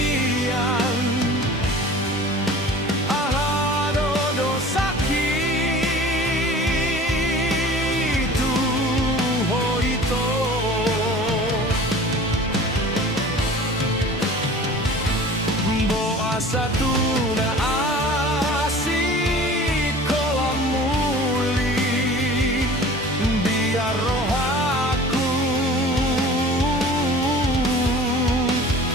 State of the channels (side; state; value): both; normal; correlation 0.42